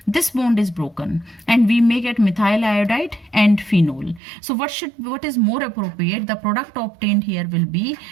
this bond is broken, and we may get methyl iodide and phenol. So what is more appropriate? The product obtained here will be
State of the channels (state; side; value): drops out; left; at 4.2 s